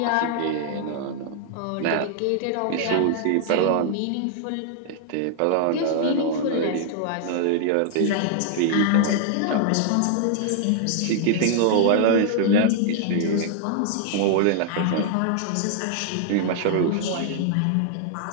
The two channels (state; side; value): different; both; correlation -0.01